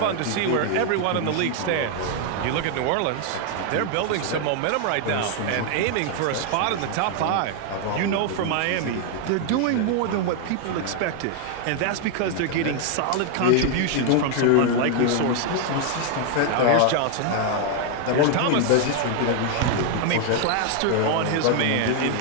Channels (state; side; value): different; both; correlation 0.00